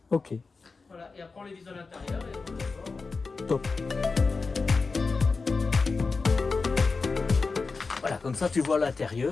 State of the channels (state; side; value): quieter; right; 4.3 dB